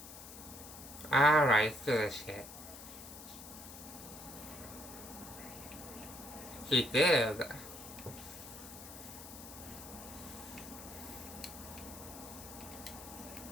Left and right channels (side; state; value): left; noise; hiss, 13 dB below the sound